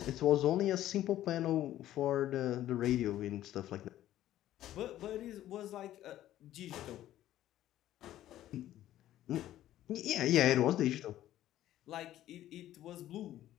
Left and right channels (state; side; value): quieter; right; 13.2 dB